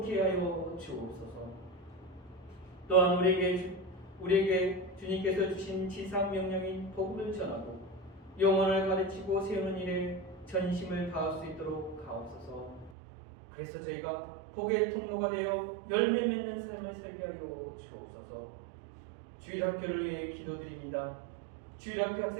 하여 주옵소서. 또한 우리에게 주님께서 주신 지상 명령인 복음을 전하고 영혼을 가르치고 세우는 일에 전심을 다할 수 있도록 하옵소서. 그래서 저희가 복의 통로가 되어 열매 맺는 삶을 살게 하여 주옵소서. 주일학교를 위해 기도드립니다. 주일학교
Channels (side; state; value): left; drops out; at 12.9 s